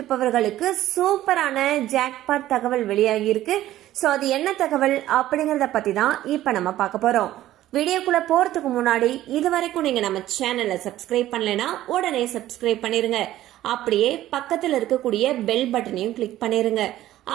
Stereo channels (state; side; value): quieter; left; 14.1 dB